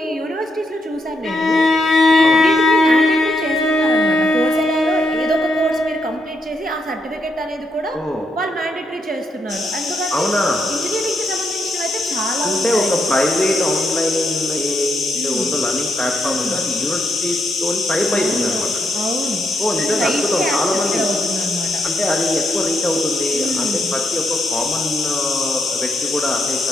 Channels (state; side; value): normal; both; correlation 0.79